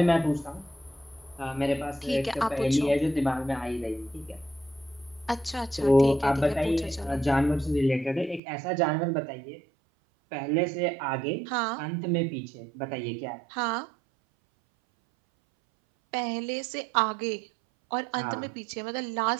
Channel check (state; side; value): drops out; left; at 8.4 s